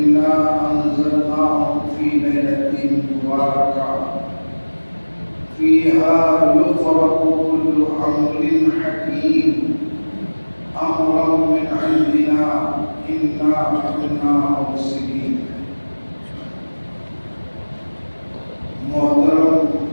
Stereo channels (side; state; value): both; inverted; correlation -1.00